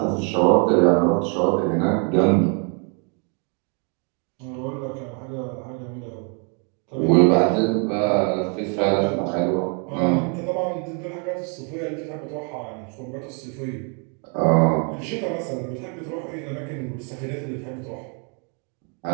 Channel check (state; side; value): quieter; left; 38.4 dB